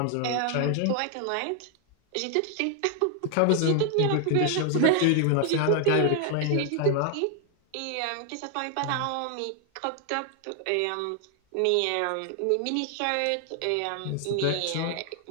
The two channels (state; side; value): different; both; correlation 0.00